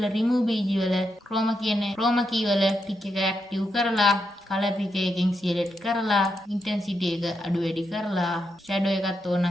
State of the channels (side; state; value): both; normal; correlation 0.83